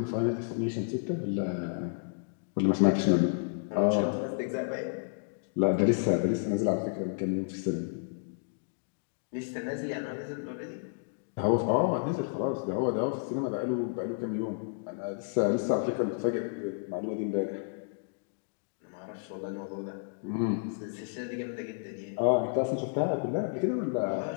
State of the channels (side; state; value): right; silent; digital silence